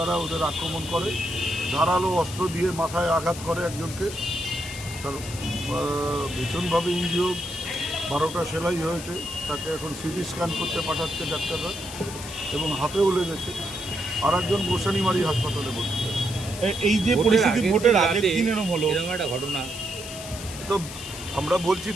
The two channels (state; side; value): noise; left; hiss, 12 dB below the sound